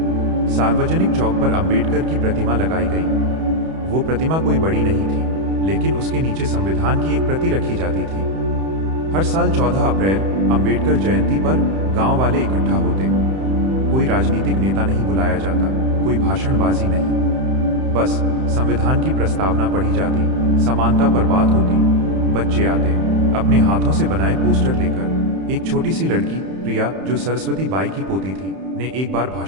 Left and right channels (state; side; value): late; left; 31 ms